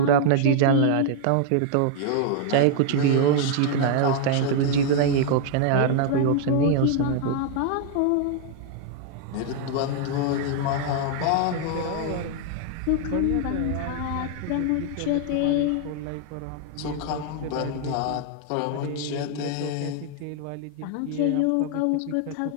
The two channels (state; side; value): different; both; correlation 0.00